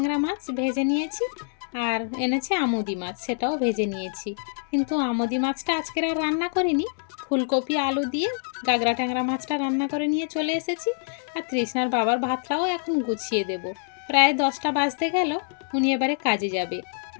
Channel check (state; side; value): silent; right; 61 dB below the other